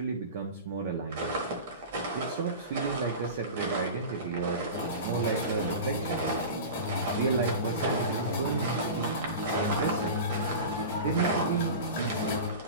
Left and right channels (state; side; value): inverted; both; correlation -0.30